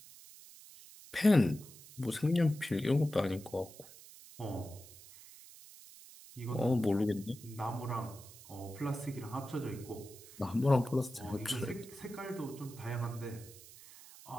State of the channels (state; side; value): noise; right; hiss, 19 dB below the sound